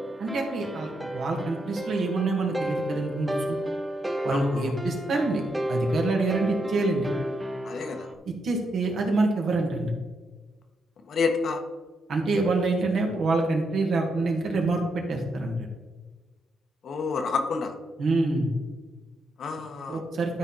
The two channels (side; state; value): both; normal; correlation 0.81